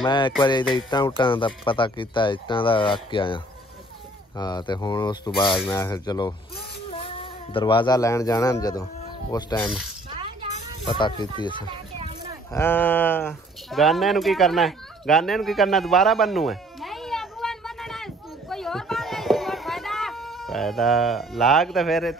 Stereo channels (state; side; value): normal; both; correlation 0.57